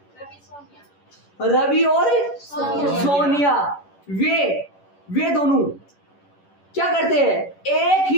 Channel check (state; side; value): late; right; 11 ms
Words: रवि और सोनिया वे दोनों क्या करते हैं, एक